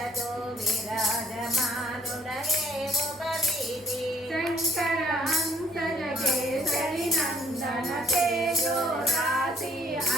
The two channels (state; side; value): normal; both; correlation 0.62